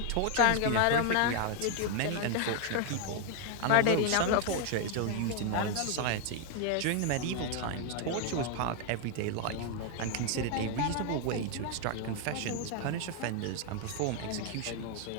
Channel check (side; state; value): both; different; correlation 0.00